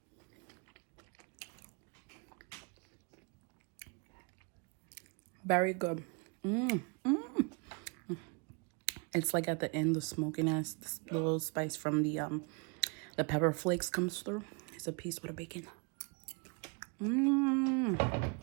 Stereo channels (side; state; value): left; quieter; 33.0 dB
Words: Very good. It's like at the end, the smokiness, this little spice from the pepper flakes comes through. It's a piece with a bacon.